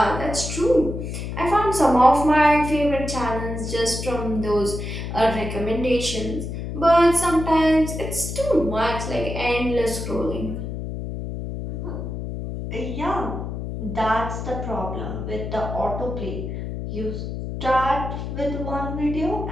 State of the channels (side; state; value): left; noise; hum, 6 dB below the sound